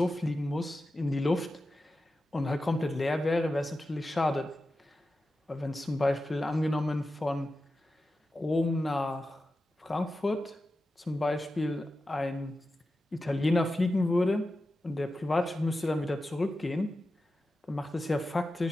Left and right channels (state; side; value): normal; both; correlation 0.92